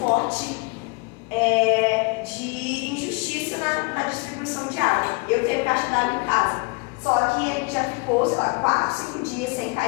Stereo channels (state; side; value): quieter; right; 30.7 dB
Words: forte de injustiça na distribuição de água. Eu tenho caixa d'água em casa, só que a gente já ficou, 4, 5 dias sem